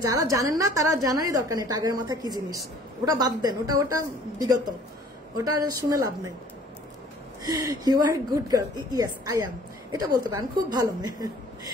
যারা জানেন না তারা জানারই দরকার নেই টাইগারের মাথা কি জিনিস, ওটা বাদ দেন, ওটা বিগত, ওটা শুনে লাভ নেই। You are good girl, yes I am, এটা বলতে পারেন, খুব ভালো মেয়ে।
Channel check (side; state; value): both; normal; correlation 0.53